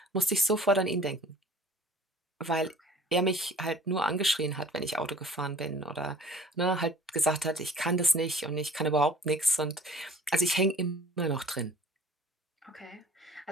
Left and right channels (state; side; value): normal; both; correlation 0.49